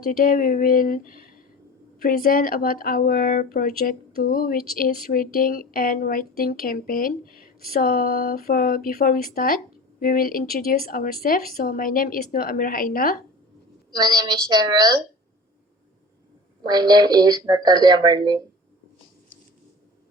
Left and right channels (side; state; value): both; normal; correlation 0.36